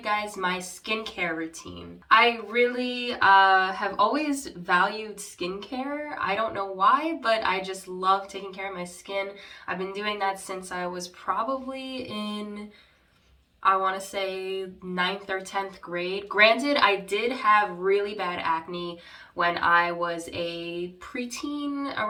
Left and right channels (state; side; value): identical; both; correlation 1.00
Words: guys my skincare routine. I really have always valued skincare. I don't know why, but I just love taking care of my skin. I've been doing that since I was probably in, I want to say, 9th or 10th grade. Granted, I did have really bad acne when I was a preteen,